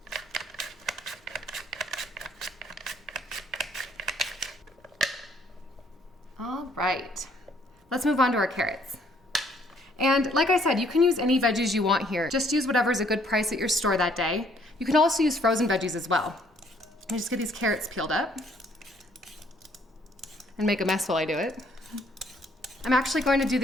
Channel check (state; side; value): normal; both; correlation 0.64